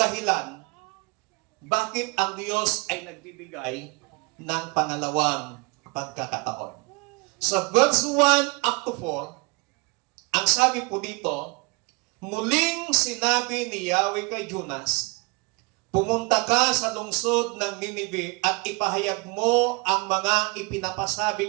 bakit ang Diyos ay nagbibigay ng pangalawang pagkakataon. Sa verse 1 up to 4, ang sabi po dito, muling sinabi ni Yahweh kay Jonas, pumunta ka sa lungsod ng Ninive at ipahayag mo ang mga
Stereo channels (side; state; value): left; quieter; 28.0 dB